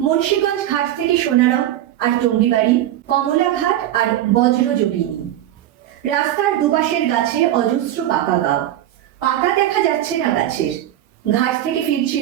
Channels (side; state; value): left; quieter; 12.8 dB